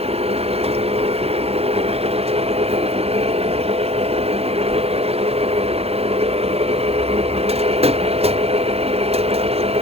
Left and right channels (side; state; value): left; late; 0.29 ms